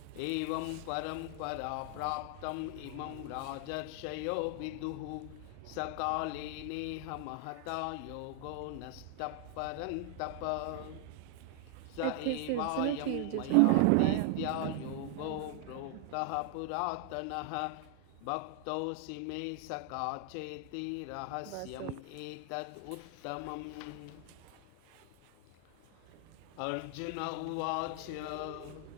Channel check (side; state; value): both; different; correlation 0.00